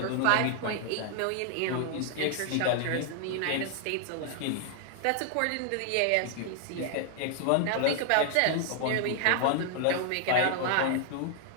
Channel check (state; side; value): different; both; correlation 0.00